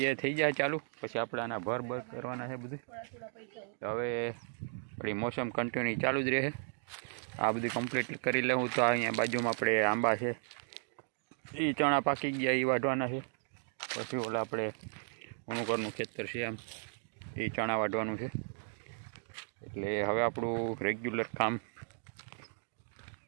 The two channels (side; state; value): left; silent; 54 dB below the other